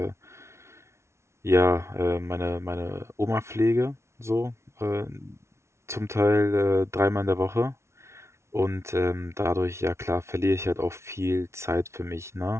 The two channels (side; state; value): left; late; 0.13 ms